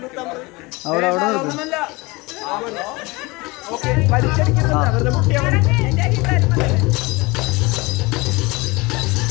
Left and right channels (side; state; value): right; quieter; 24.2 dB